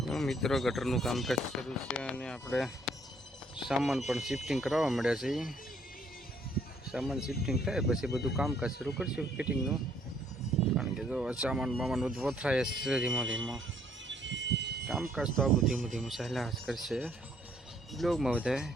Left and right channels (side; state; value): both; normal; correlation 0.65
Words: મિત્રો, ગટરનું કામકાજ શરૂ છે અને આપણે સામાન પણ શિફ્ટિંગ કરાવવા મળ્યા છે. સામાન શિફ્ટિંગ થાય પછી બધું કામકાજ શરૂ કરશું ફિટિંગનું, કારણ કે જો સામાન બધું વથરાય છે ધીમો ધીમો. કામકાજ તો આવું ધીમું ચાલ્યા જ કરશે. બ્લોગમાં બધા